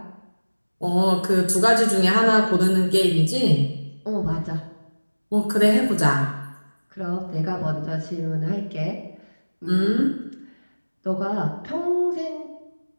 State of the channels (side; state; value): both; inverted; correlation -1.00